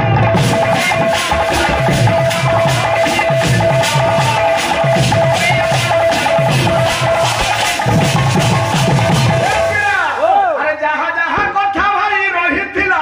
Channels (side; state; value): both; identical; correlation 1.00